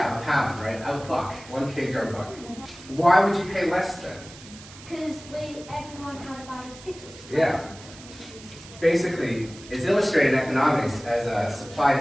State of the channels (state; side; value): noise; right; hiss, 18 dB below the sound